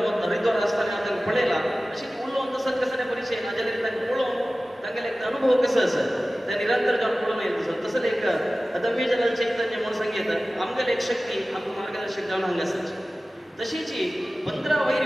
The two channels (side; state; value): both; normal; correlation 0.96